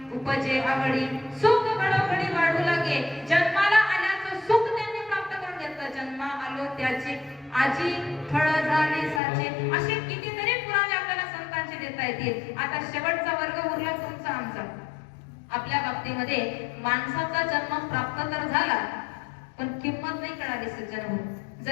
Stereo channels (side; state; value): right; drops out; at 9.2 s